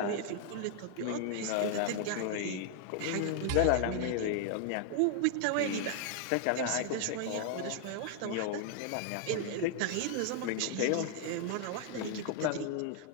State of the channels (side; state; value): both; different; correlation 0.00